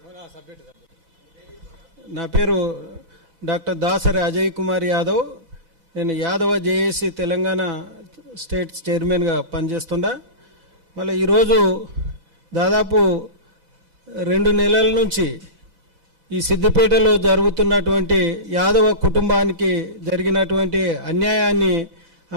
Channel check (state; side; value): late; left; 4.0 ms